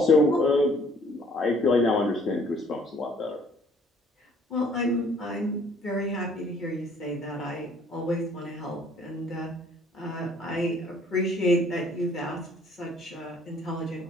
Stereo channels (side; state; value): both; normal; correlation 0.59